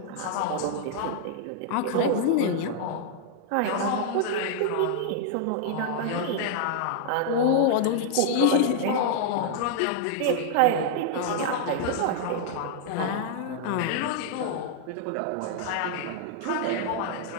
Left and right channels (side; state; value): both; different; correlation -0.01